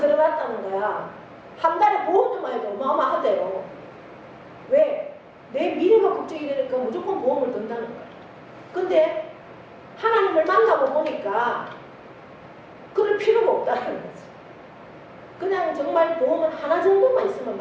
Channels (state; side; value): identical; both; correlation 1.00